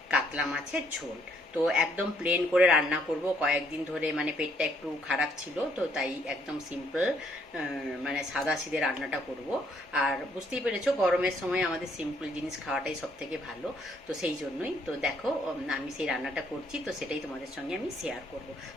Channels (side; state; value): both; normal; correlation 0.69